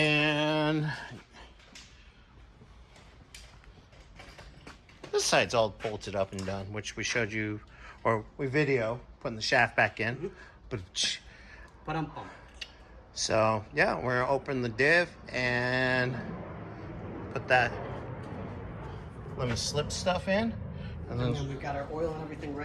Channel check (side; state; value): both; identical; correlation 1.00